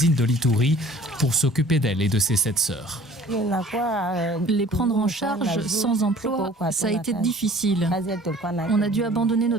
de l'Ituri, pour s'occuper d'elle et de ses 7 sœurs. Les prendre en charge sans emploi, ça a été difficile. On a dû abandonner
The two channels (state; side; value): normal; both; correlation 0.50